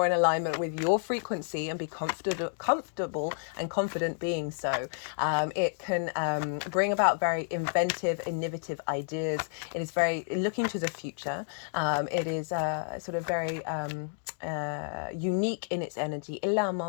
in alignment with your frequency and be comfortable and confident being so. It can bring about very inventive, innovative ideas. It is very looking to the future. It is sort of very unique in its energy. And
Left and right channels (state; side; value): silent; right; digital silence